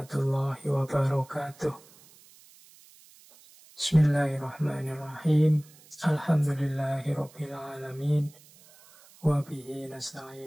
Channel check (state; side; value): noise; right; hiss, 25 dB below the sound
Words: wabarakatuh. Bismillahirrahmanirrahim. Alhamdulillahirabbil alamin. Wa bihi